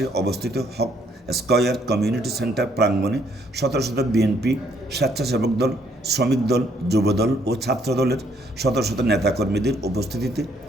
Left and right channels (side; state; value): both; normal; correlation 0.68